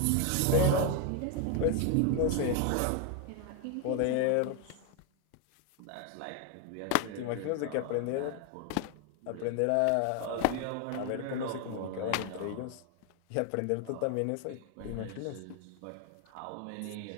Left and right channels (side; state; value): both; different; correlation 0.01